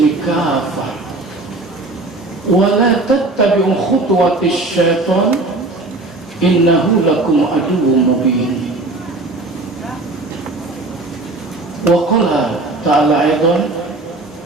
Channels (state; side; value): quieter; left; 3.0 dB